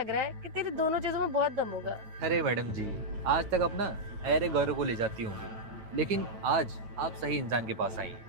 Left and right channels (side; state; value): left; late; 9.1 ms